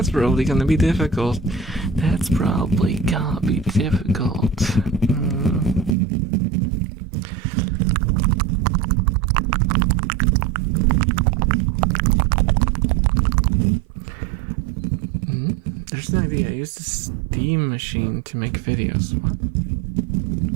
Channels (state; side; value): drops out; left; at 6.0 s